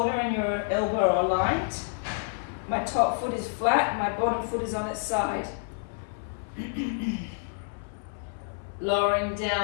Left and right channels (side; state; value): right; silent; 59 dB below the other